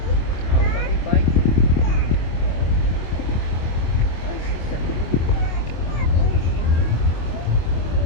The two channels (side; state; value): right; late; 25 ms